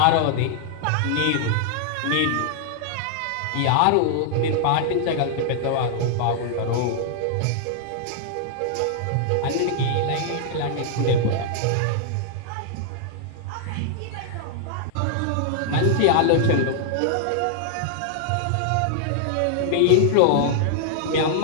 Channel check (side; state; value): both; different; correlation -0.01